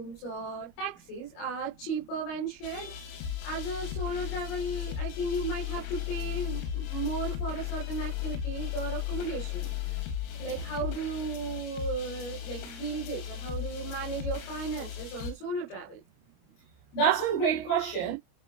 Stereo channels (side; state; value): right; late; 30 ms